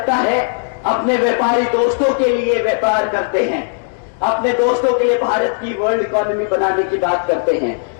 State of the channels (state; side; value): silent; right; digital silence